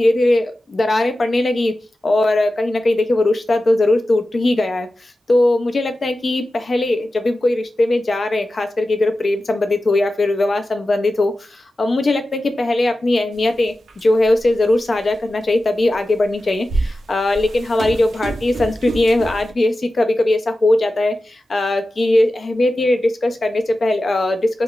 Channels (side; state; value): both; normal; correlation 0.94